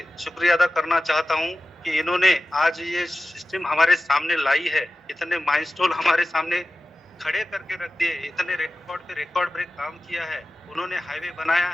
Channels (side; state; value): both; normal; correlation 0.95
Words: शुक्रिया अदा करना चाहता हूँ कि इन्होंने आज ये सिस्टम हमारे सामने लाई है. इतने माइलस्टोन हमारे सामने खड़े करके रख दिए, इतने रिकॉर्ड पे रिकॉर्ड ब्रेक काम किया है. उन्होंने हाईवे बनाया